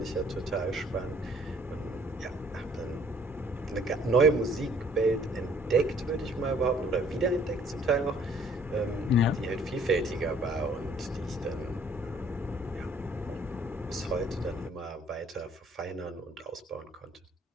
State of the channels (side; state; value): both; normal; correlation 0.59